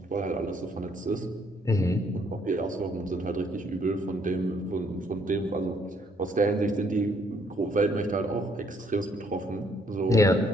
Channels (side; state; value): both; normal; correlation 0.67